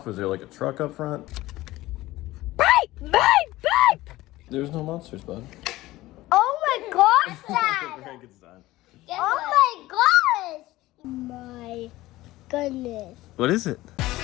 Was there like a truck up front? Beep, beep, beep. There's no monsters, bud. Oh my gosh, Dad. Oh my gosh. My goodness. What is it?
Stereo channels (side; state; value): right; quieter; 17.5 dB